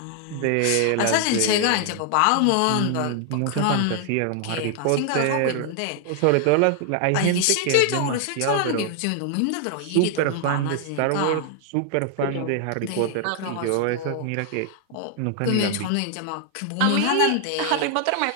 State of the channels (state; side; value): different; both; correlation 0.00